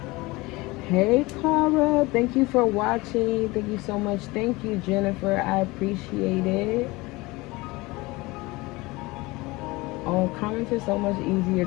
Hey Cara, thank you for watching. Thank you so much. Thank you, Jennifer. I appreciate it. Oh, comments are so much easier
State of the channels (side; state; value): right; quieter; 22.4 dB